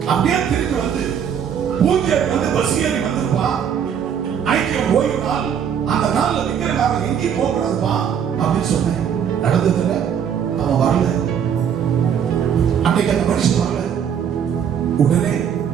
அப்படியே திருப்பி வந்து பூஜை வந்து பஸ் ஏறி வந்திருப்பா. ஐக்கியம் ஓய்வு நாள், அந்த நாள்ல விக்கிரகாரன் எங்கேயும் போக கூடாதுப்பா அப்படின்னு சொன்னேன். நடந்ததுல அவன் வரல. அன்னைக்கு அந்த மனுஷன் வரல. உடனே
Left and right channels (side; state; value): left; quieter; 8.2 dB